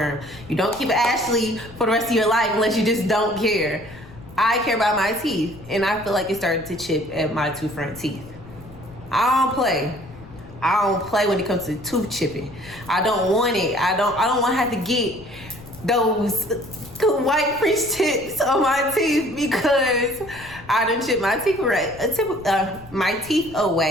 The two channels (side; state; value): left; noise; rumble, 19 dB below the sound